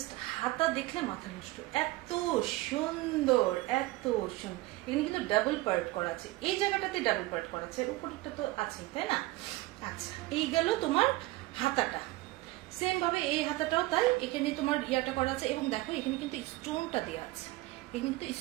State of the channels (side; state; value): left; quieter; 19.4 dB